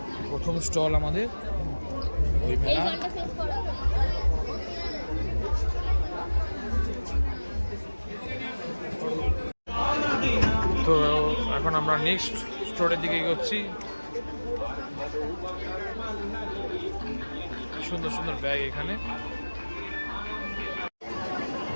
প্রথম স্টল আমাদের বইমেলা। তো এখন আমরা নেক্সট স্টোরের দিকে এগোচ্ছি। সুন্দর সুন্দর ব্যাগ এখানে।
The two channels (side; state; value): both; inverted; correlation -1.00